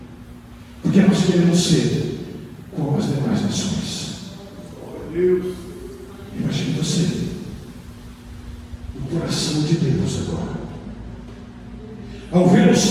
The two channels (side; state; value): both; identical; correlation 1.00